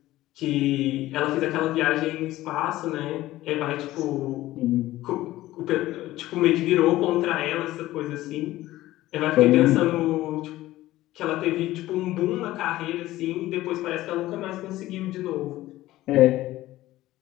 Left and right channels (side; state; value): right; quieter; 16.1 dB